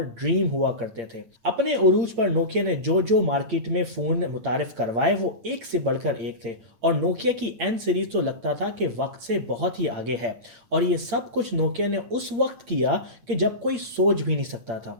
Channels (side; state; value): left; late; 8.7 ms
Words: ड्रीम हुआ करते थे। अपने उरूज पर नोकिया ने जो जो मार्केट में फ़ोन मुतारिफ करवाए वो एक से बढ़कर एक थे और नोकिया की एन सीरीज तो लगता था कि वक्त से बहुत ही आगे है। और ये सब कुछ नोकिया ने उस वक्त किया कि जब कोई सोच भी नहीं सकता था।